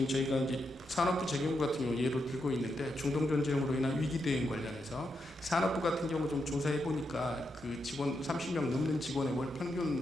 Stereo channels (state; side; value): normal; both; correlation 0.83